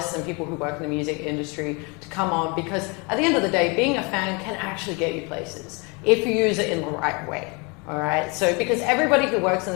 and people who work in the music industry to come on, because at the end of the day, being a fan can actually get you places if you use it in the right way. All right. So because everybody who works in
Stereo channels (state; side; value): quieter; right; 30.4 dB